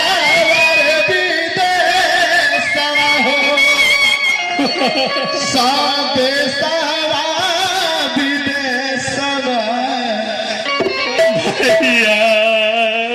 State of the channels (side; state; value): both; identical; correlation 1.00